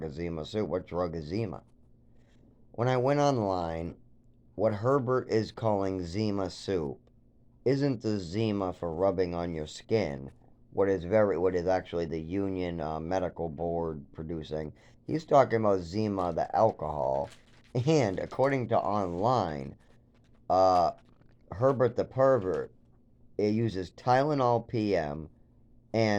is Zima Soup? What drug is Zima? When I went online, what Herbert is calling Zima Soup isn't the Zima for rubbing on your skin, what is actually the Union Medical Board producing. He's talking about Zima, the alcohol, and according to online, uh, Herbert the pervert, it uses Tylenol PM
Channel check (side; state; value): both; identical; correlation 1.00